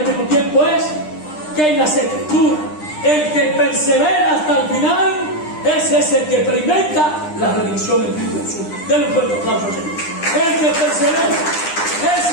mismo tiempo es que en las Escrituras, el que persevera hasta el final, ese es el que experimenta la redención en Cristo Jesús. Denle un fuerte aplauso, Señor. El que persevera,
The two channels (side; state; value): right; late; 9.9 ms